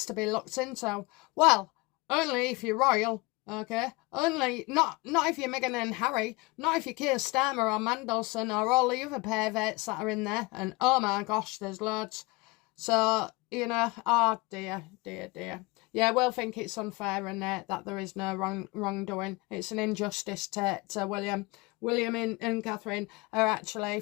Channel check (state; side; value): quieter; right; 24.2 dB